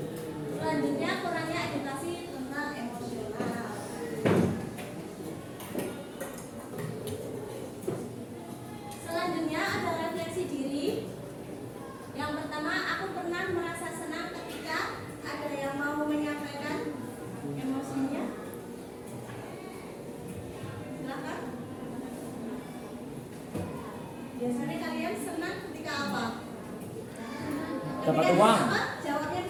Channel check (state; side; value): identical; both; correlation 1.00